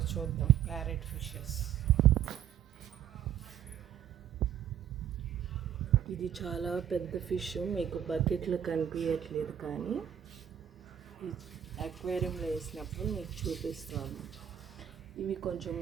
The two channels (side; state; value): left; quieter; 9.7 dB